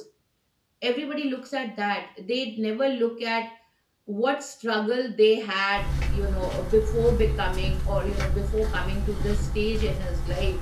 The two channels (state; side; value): identical; both; correlation 1.00